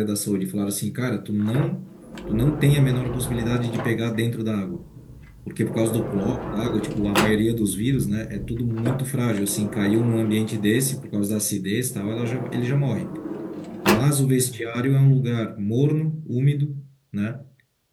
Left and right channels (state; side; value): identical; both; correlation 1.00